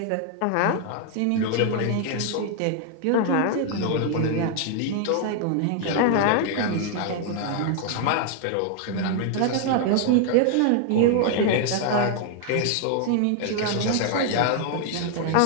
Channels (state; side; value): different; both; correlation 0.00